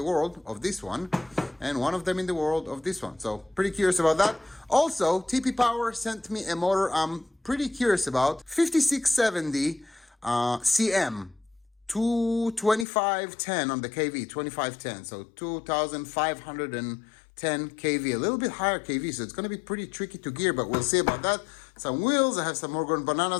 world of this one, and one of them in the world of this one. So pretty curious about that. Also, TP Power sent me a motor I'm pretty curious about. 5670 CM. 2510 on the KV, 2510, so 2510 kV, a little bit higher KV, so it's going to be pretty tricky to gear, but we'll see about that. Some wheels, I have some Morgan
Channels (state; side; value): drops out; right; at 12.9 s